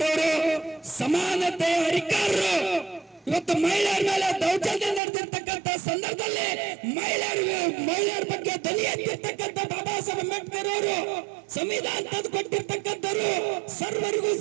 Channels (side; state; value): left; drops out; at 5.0 s